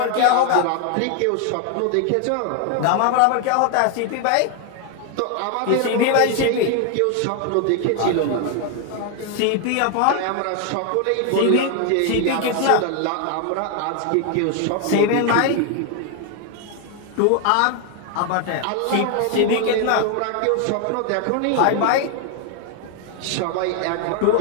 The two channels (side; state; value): both; different; correlation 0.01